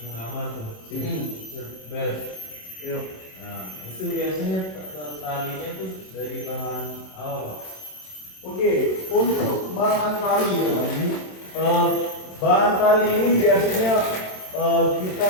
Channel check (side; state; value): right; late; 27 ms